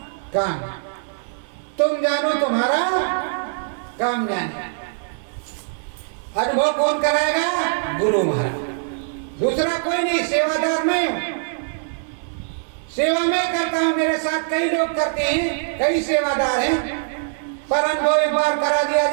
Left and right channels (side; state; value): left; silent; 59 dB below the other